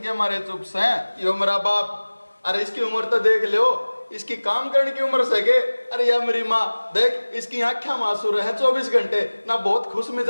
मारे चुप से हैं। यो मेरा बाप, अरे इसकी उम्र तो देख लो, इसकी काम करने की उम्र सके। अरे या मेरी माँ देख, इसकी आंखें मासूर है 24 घंटे ना, बहुत खुश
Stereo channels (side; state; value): both; inverted; correlation -1.00